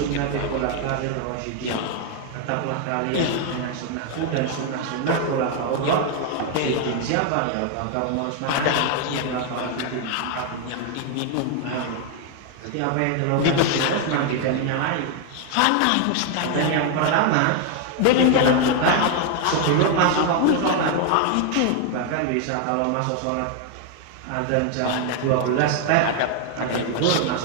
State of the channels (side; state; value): both; different; correlation 0.00